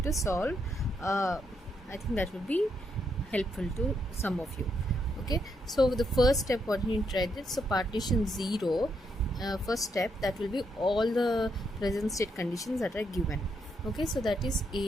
to solve. I think that would be helpful to some of you. Okay, so the first step what you need to write it. So partition 0, first step, that will be all the present state conditions that are given. Okay, so that is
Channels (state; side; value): normal; both; correlation 0.78